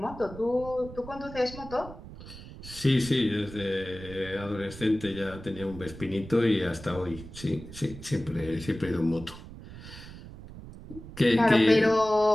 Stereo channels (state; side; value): noise; right; rumble, 15 dB below the sound